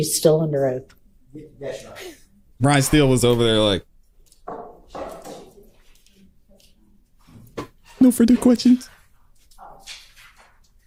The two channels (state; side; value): identical; both; correlation 1.00